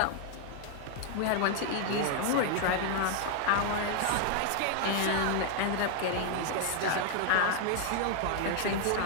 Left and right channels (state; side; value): different; both; correlation 0.00